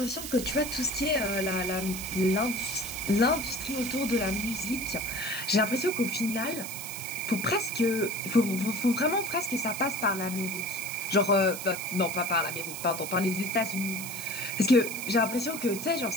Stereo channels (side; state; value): right; noise; hiss, 8 dB below the sound